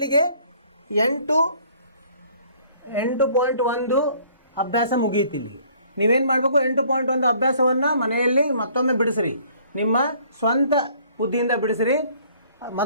8.1 ಅಭ್ಯಾಸ ಮುಗಿಯಿತು. ಇಲ್ಲಿಗೆ ನೀವೇನು ಮಾಡಬೇಕು, 8.1 ಅಭ್ಯಾಸವನ್ನು ಮನೆಯಲ್ಲಿ ಮತ್ತೊಮ್ಮೆ ಬಿಡಿಸ್ರಿ, ನಿಮ್ಮ ಸ್ವಂತ ಬುದ್ಧಿಯಿಂದ ಬಿಡಿಸ್ರಿ.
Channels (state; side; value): inverted; both; correlation -0.58